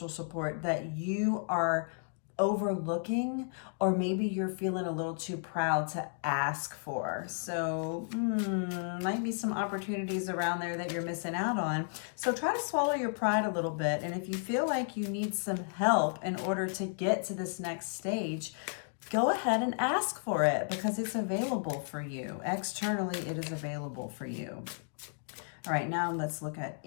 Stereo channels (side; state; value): right; silent; digital silence